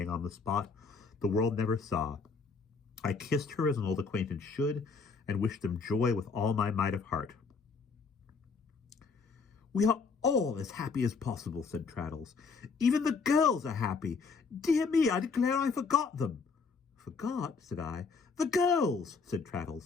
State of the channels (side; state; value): right; quieter; 5.0 dB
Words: on the spot, the world never saw. I kissed her as an old acquaintance should, and wished them joy with all my might of heart. "We are all as happy as possible," said Traddles. "Even the girls are happy. Dear me, I declare I forgot them." "Forgot?" said I. "The girls," said